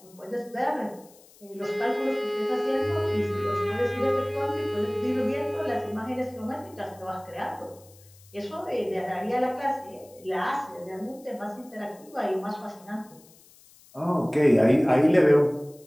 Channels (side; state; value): left; noise; hiss, 26 dB below the sound